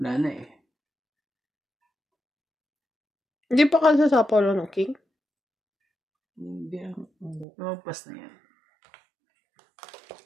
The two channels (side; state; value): left; drops out; at 7.5 s